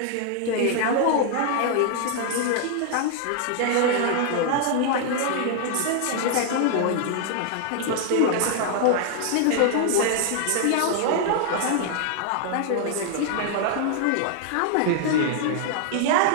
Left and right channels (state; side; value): different; both; correlation -0.01